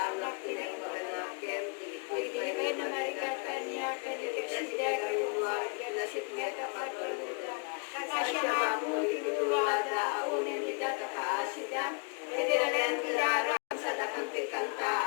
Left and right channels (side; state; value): right; quieter; 36.0 dB